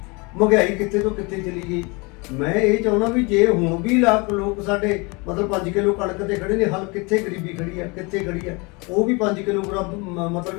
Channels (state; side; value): quieter; right; 28.4 dB